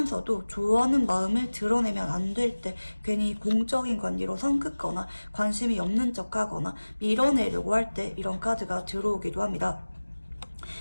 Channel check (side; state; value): both; inverted; correlation -1.00